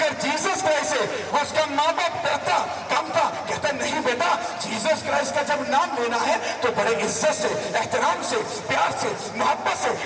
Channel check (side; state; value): both; identical; correlation 1.00